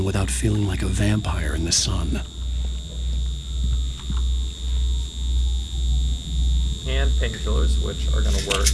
without feeling like a vampire in the sun. And painkillers, which are going to work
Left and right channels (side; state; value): both; identical; correlation 1.00